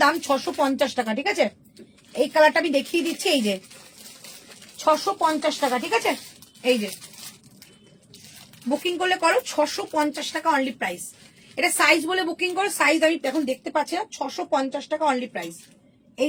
দাম 650 টাকা, ঠিক আছে? এই কালারটা আমি দেখিয়ে দিচ্ছি, এই যে 650 টাকা, ঠিক আছে? এই যে বুকিং করলে করো 650 টাকা অনলি প্রাইস। এটা সাইজ বলে বুকিং করো, সাইজ আমি এখন দেখতে পাচ্ছি না, 650 টাকা অনলি প্রাইস। এই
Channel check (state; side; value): identical; both; correlation 1.00